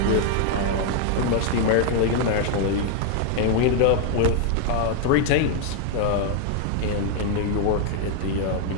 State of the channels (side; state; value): both; different; correlation 0.00